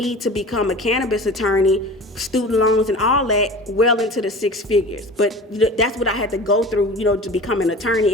to become a cannabis attorney, student loans and all that, well into the 6 figures. But that's what I had to go through, you know, to become an attorney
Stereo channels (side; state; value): both; normal; correlation 0.37